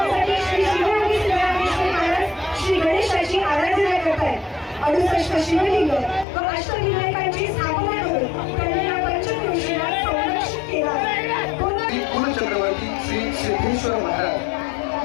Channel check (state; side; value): drops out; right; at 6.2 s